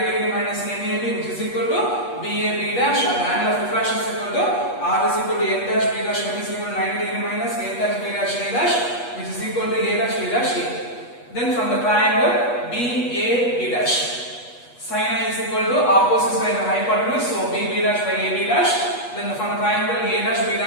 degree minus NAB which is equal to BAB dash and the angle of refraction is equal to R is equal to N dash B dash M is equal to 90 degree minus N dash B dash A dash which is equal to A dash B dash A. Then from the triangle BAB dash, sin I is equal to opposite side of the hypotenuse, so BB dash by AB dash. Then from the triangle A dash B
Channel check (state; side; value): late; right; 8.3 ms